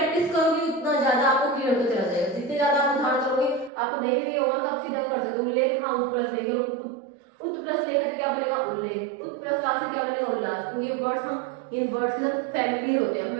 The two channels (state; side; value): drops out; left; at 3.7 s